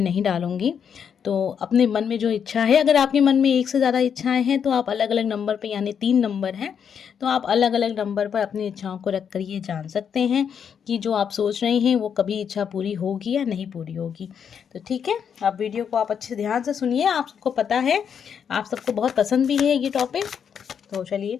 नहीं डालूंगी। तो अपने मन में जो इच्छा है, अगर आपके मन में एक से ज़्यादा इच्छाएं हैं तो आप अलग अलग नंबर पर, यानी 3 नंबर हैं, तो आप अलग अलग नंबर पर अपनी इच्छाओं को रख कर ये जान सकते हैं कि जो आप सोच रहे हैं वो कभी इच्छा पूरी होगी या नहीं पूरी होगी। तो ठीक है, आप वीडियो को आप अच्छे ध्यान से सुनिए। आप सबको पता है, आप सबको बहुत पसंद भी है ये टॉपिक। तो चलिए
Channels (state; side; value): quieter; right; 7.6 dB